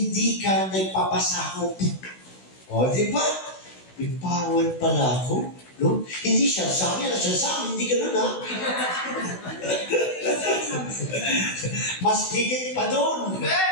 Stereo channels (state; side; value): late; right; 16 ms